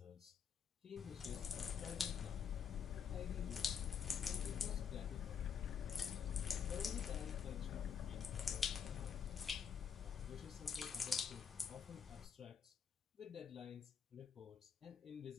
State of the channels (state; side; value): quieter; right; 7.2 dB